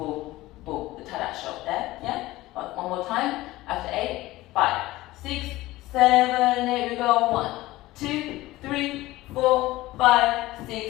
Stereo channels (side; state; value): right; quieter; 17.9 dB